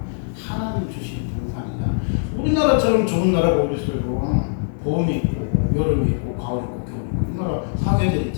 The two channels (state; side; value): silent; right; digital silence